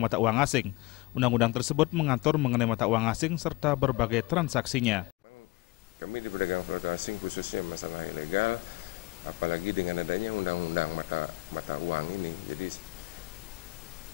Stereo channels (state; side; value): quieter; right; 22.8 dB